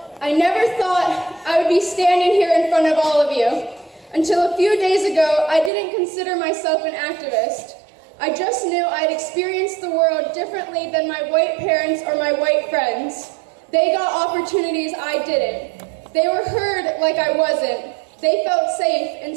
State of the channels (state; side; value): drops out; left; at 5.7 s